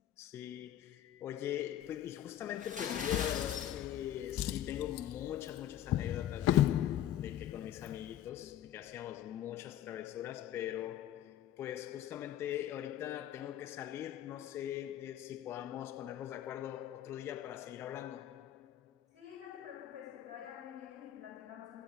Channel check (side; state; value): right; quieter; 11.6 dB